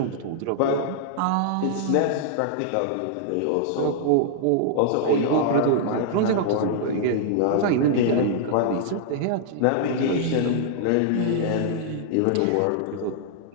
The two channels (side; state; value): both; different; correlation -0.01